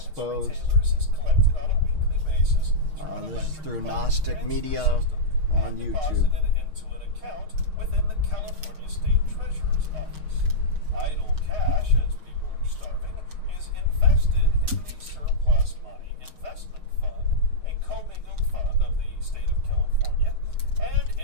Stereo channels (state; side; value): late; left; 6.5 ms